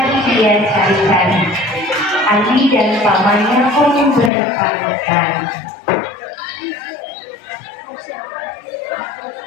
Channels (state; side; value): drops out; right; at 4.3 s